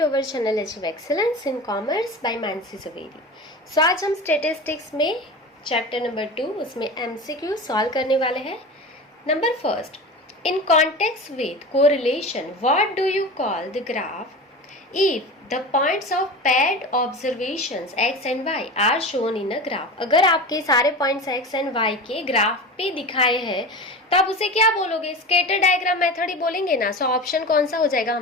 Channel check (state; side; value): normal; both; correlation 0.30